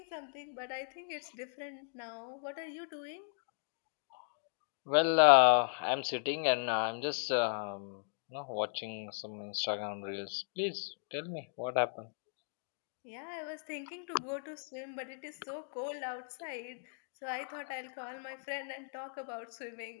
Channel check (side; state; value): right; silent; digital silence